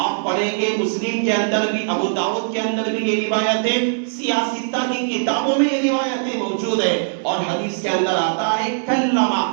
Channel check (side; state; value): left; silent; digital silence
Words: آپ پڑھیں گے مسلم کے اندر بھی، ابو داؤد کے اندر بھی یہ روایت ہے، سیاستہ کی کتابوں میں یہ روایتیں موجود ہیں، اور حدیث کے اندر آتا ہے کلمہ،